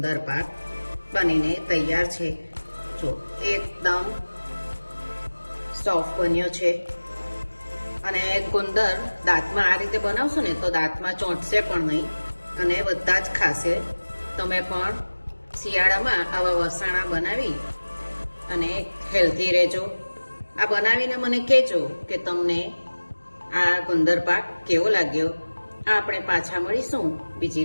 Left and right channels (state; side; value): inverted; both; correlation -1.00